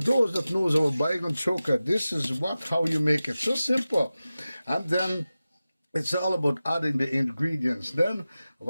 that knows about Baighan Choka, this is how you make it. So simple. And then it's all about adding the ingredients. Then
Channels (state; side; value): inverted; both; correlation -0.95